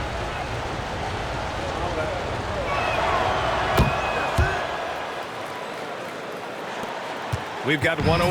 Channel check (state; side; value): identical; both; correlation 1.00